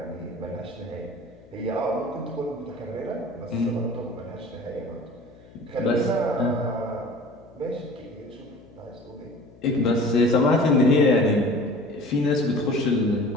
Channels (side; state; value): left; noise; hum, 23 dB below the sound